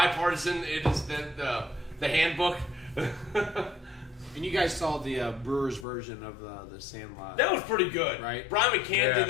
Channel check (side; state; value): right; drops out; at 5.9 s